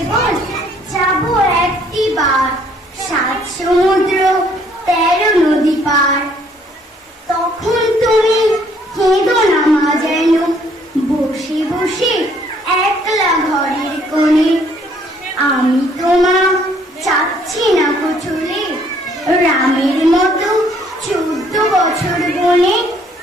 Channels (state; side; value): normal; both; correlation 0.64